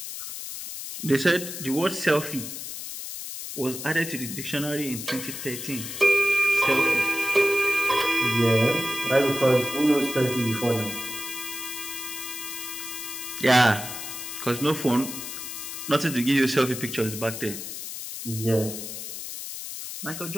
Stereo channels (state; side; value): noise; left; hiss, 8 dB below the sound